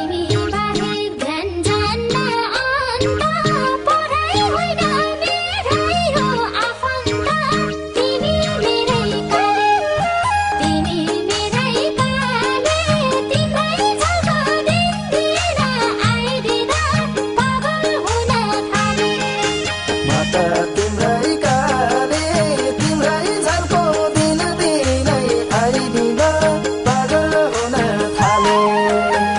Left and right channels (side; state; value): both; identical; correlation 1.00